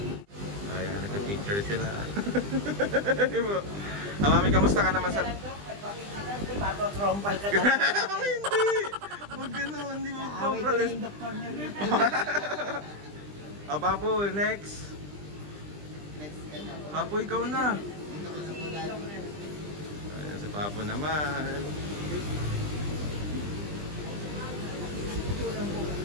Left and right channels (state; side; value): late; left; 20 ms